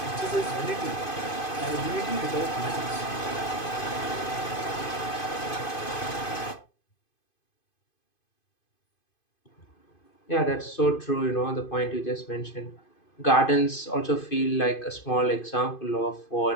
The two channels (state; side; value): late; right; 2.5 ms